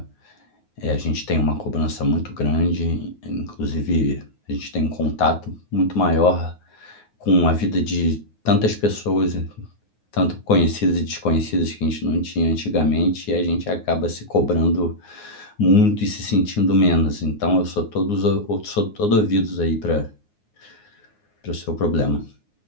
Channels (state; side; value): late; right; 9.6 ms